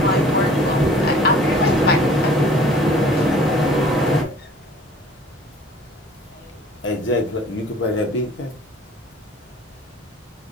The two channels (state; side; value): normal; both; correlation 0.50